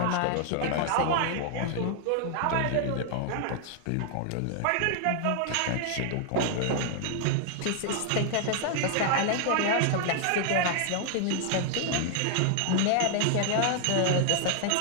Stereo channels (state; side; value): different; both; correlation 0.00